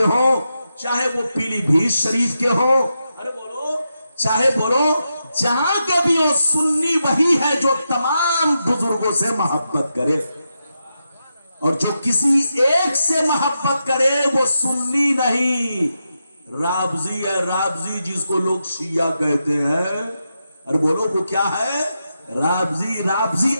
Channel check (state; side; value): inverted; both; correlation -0.86